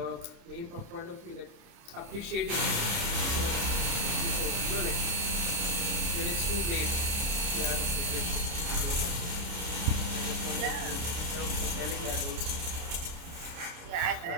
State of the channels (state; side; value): late; left; 29 ms